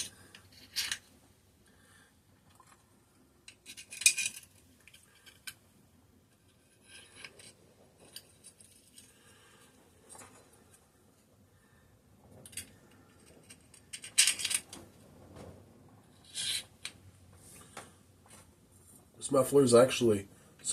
This muffler is actually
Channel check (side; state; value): both; identical; correlation 1.00